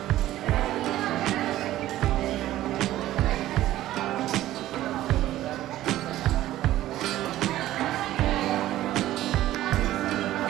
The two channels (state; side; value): quieter; left; 14.4 dB